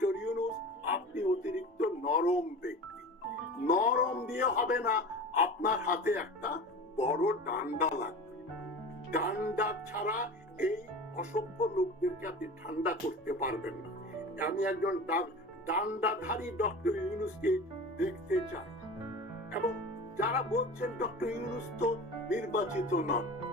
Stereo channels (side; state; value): both; normal; correlation 0.34